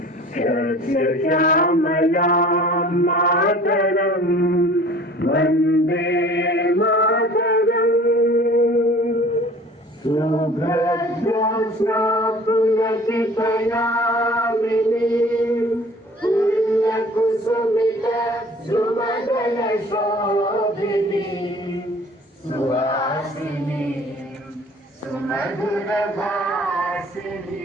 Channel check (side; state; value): both; normal; correlation 0.48